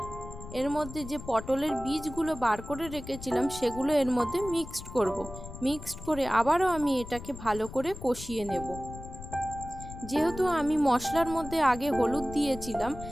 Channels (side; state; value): left; noise; rumble, 12 dB below the sound